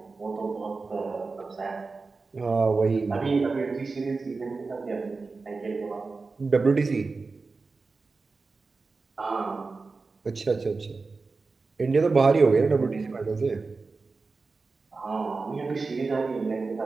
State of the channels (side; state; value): left; quieter; 4.1 dB